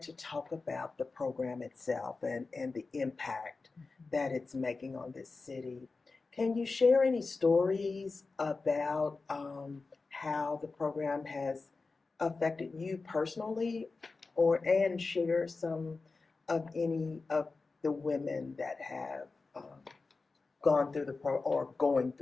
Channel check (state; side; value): quieter; right; 4.0 dB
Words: to talk about the program itself and the impact that it's making on this city. Can you share any stories about how the program has affected you personally, and share some of any of the women that have gone through the or going